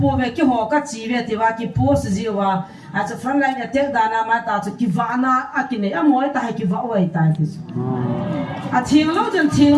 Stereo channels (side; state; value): both; identical; correlation 1.00